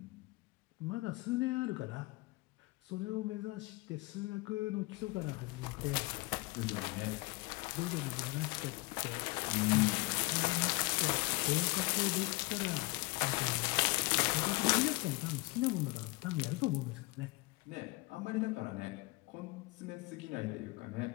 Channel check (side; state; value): right; quieter; 23.5 dB